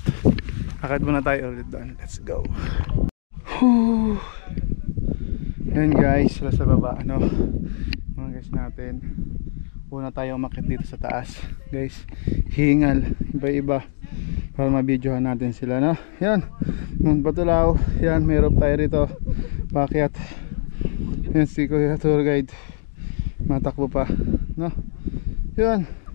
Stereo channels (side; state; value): right; silent; digital silence